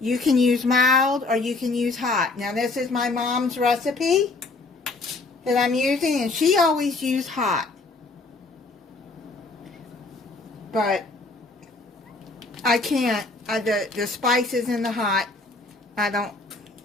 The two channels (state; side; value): quieter; right; 3.5 dB